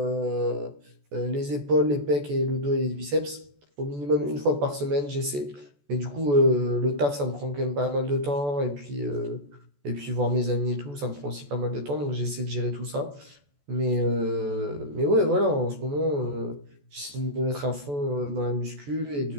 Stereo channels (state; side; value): late; left; 14 ms